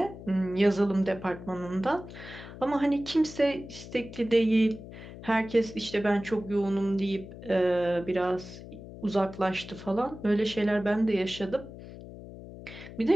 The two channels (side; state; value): left; noise; hum, 14 dB below the sound